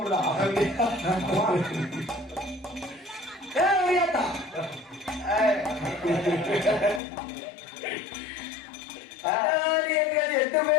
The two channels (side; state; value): right; drops out; at 7.0 s